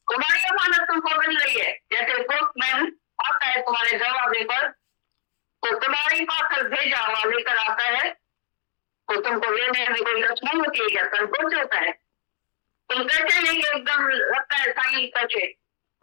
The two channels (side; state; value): right; silent; digital silence